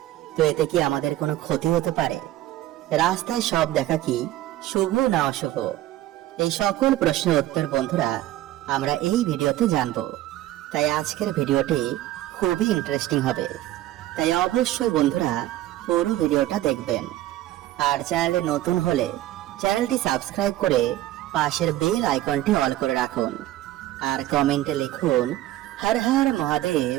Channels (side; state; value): left; quieter; 14.8 dB